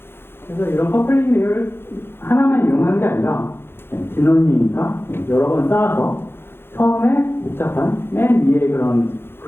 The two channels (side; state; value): right; late; 0.11 ms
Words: 그래서 이런 커플링 레이어를 하나만 이용하는 게 아니라 딥러닝이니까 여러 번 쌓아서 처음에 복잡한 맨 위에 그런